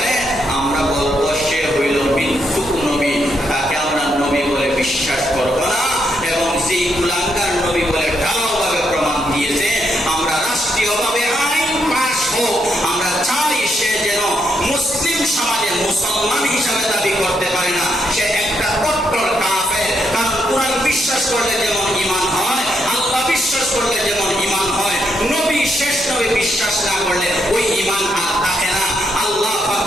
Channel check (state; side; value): normal; both; correlation 0.78